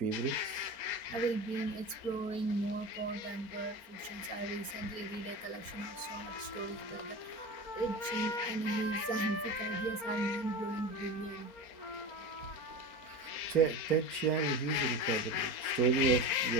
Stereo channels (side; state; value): right; late; 4.4 ms